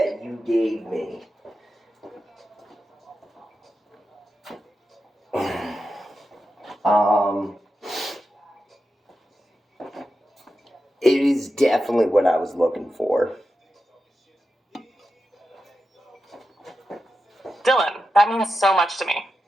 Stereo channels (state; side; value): normal; both; correlation 0.90